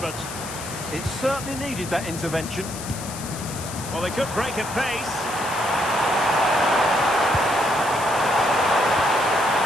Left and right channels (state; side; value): noise; left; hiss, 11 dB below the sound